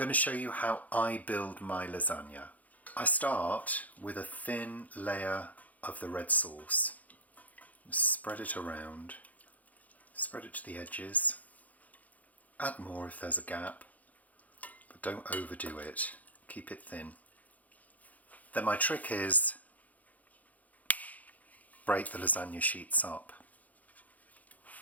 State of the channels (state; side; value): late; right; 0.076 ms